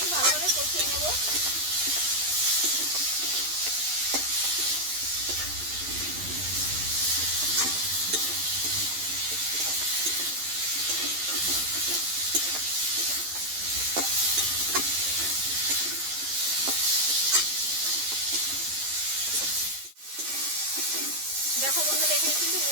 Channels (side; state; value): left; late; 11 ms